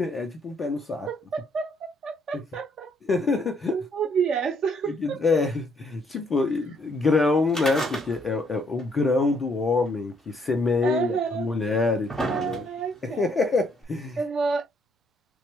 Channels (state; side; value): normal; both; correlation 0.69